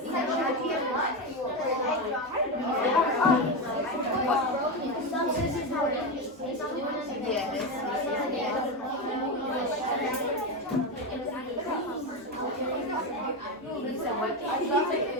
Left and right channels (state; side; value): normal; both; correlation 0.14